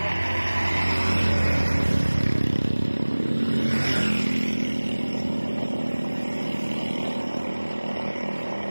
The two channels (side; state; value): both; inverted; correlation -1.00